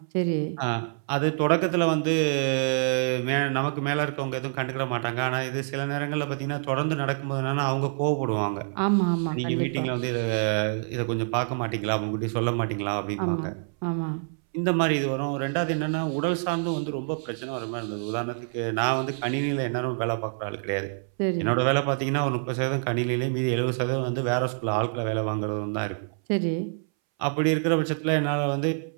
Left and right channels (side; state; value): left; silent; 60 dB below the other